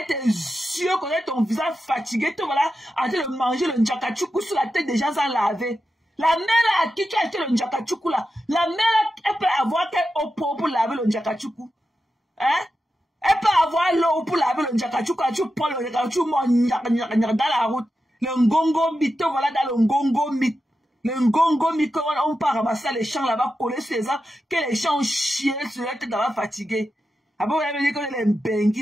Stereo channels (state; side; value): normal; both; correlation 0.90